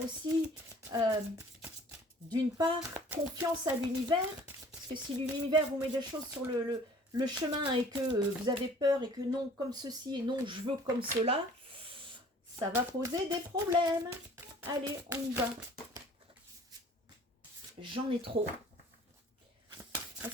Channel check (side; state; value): both; normal; correlation 0.51